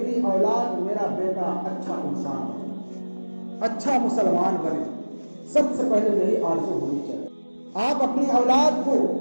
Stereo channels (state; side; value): inverted; both; correlation -1.00